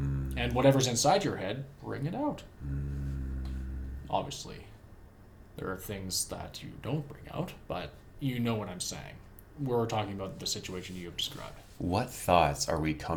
whatever's inside your head, bring it out. Obviously, there are things that you don't bring out, but you know what I'm saying. We're talking about the situation you have described. What thoughts are we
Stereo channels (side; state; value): both; identical; correlation 1.00